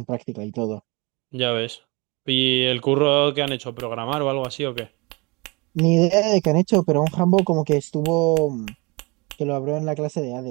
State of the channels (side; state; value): left; quieter; 27.3 dB